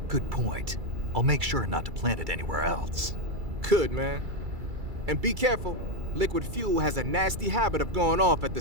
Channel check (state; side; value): late; left; 2.3 ms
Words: Good point. I'll make sure not to plant it anywhere else. Good, man. And be careful. Liquid fuel has a nasty habit of going off at